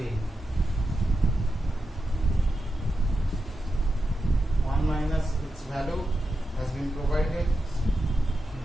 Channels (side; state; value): both; normal; correlation 0.89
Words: 1 minus its value has been provided